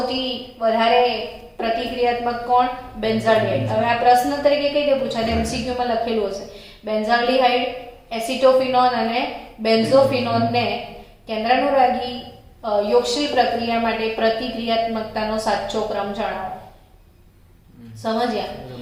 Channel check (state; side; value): identical; both; correlation 1.00